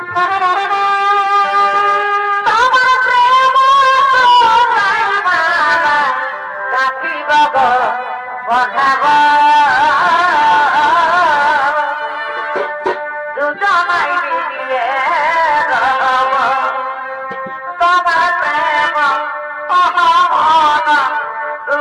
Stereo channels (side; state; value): both; identical; correlation 1.00